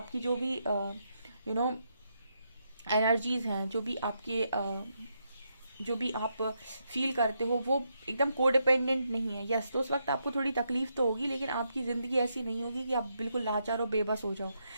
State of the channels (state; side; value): inverted; both; correlation -0.80